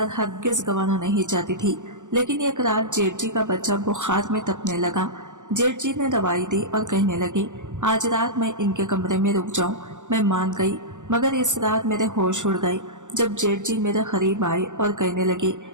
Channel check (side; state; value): left; late; 0.85 ms